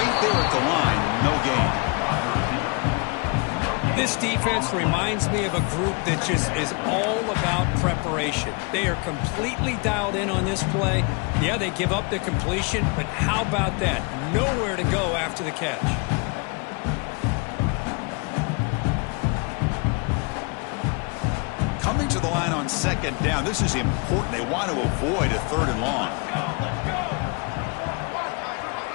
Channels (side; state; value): right; quieter; 32.4 dB